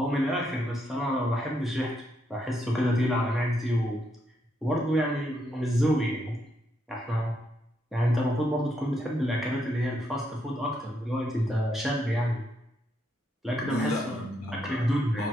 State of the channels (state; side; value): normal; both; correlation 0.78